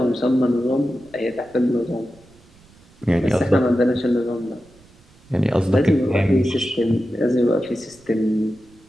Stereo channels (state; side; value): noise; right; rumble, 28 dB below the sound